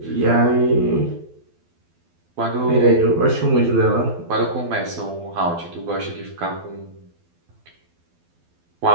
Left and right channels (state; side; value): late; left; 12 ms